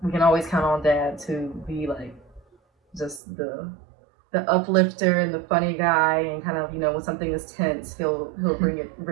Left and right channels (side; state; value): left; drops out; at 3.2 s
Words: we can always count on dad to be like just the uplifter and the funny guy, and kind of, when something is tense, he'll bring